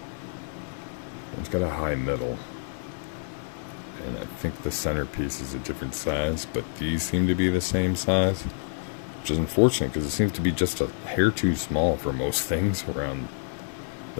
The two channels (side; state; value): right; silent; 60 dB below the other